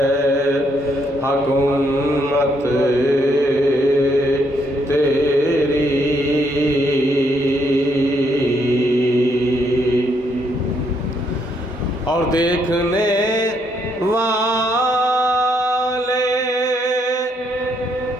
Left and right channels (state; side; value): normal; both; correlation 0.73